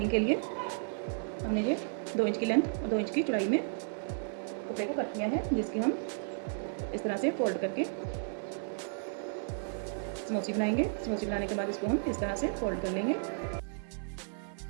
के लिए हमने ये 2 इंच की लेंथ और 2 इंच की चौड़ाई में कपड़े को कट किया है, जिसकी हम इस तरह से फोल्ड करके समोसी बनाएंगे। समोसी बनाने के बाद इसको हम इस तरह से फोल्ड कर लेंगे।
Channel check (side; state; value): left; silent; 55 dB below the other